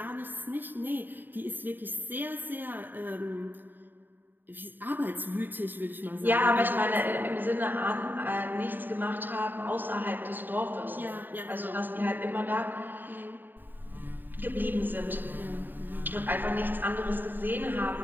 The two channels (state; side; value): late; left; 0.091 ms